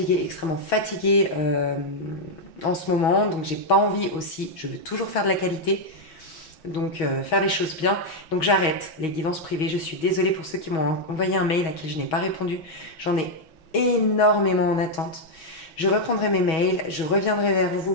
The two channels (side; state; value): right; late; 6.2 ms